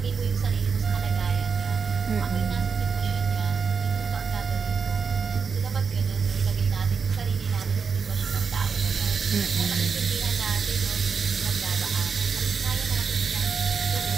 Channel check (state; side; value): quieter; left; 5.7 dB